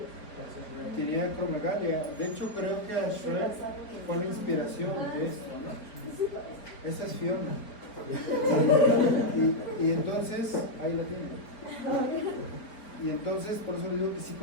tenía acromegalia. De hecho, creo que a Shrek fue la inspiración de esto, ¿no? Esa es Fiona. Y entonces, ahí la tiene. Y entonces, por eso digo que sí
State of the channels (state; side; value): late; right; 4.4 ms